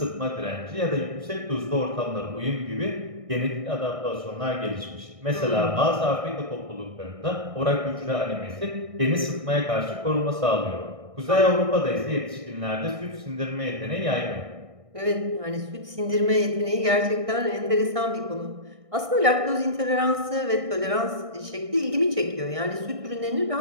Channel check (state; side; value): late; left; 1.6 ms